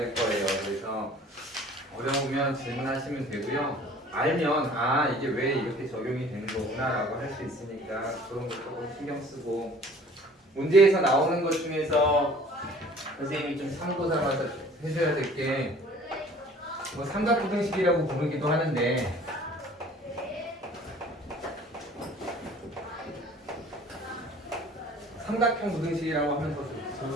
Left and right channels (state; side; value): normal; both; correlation 0.50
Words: 거예요. 그래서 어려우면 질문하시면 되고요. 알면 아 이게 왜 이렇게 적용이 되는 거구나 라고 할 수 있으니까 그런 거 조금 신경 쓰고 문제에서 나오는 것 중에서 선생님이 좀 참고 삼아서 해줘야 될 게 뭐 삼각부등식이라고 부르기도 하는데 삼각형 부등식이라고 하면 더 좋을